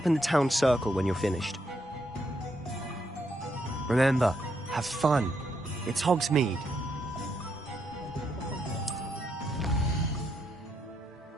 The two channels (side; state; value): both; normal; correlation 0.77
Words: in the town circle when you're finished. Remember, have fun. It's Hogsmeade.